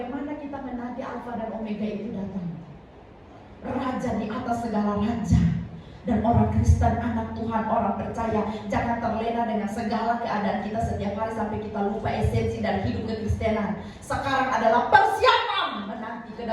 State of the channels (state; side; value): identical; both; correlation 1.00